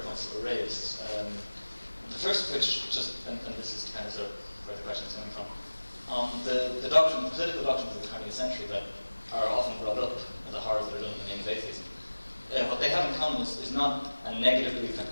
points that were raised. The first of which, and this is kind of where the question is coming from, the political doctrines of the 20th century that are often brought up as the horrors that are done in the name of atheism. What they have in common is not a negative belief, an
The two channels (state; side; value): inverted; both; correlation -1.00